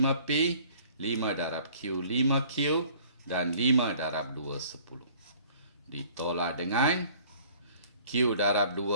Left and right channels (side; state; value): both; inverted; correlation -0.54